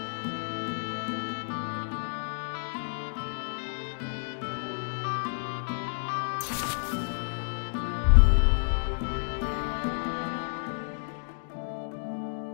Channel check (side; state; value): right; silent; digital silence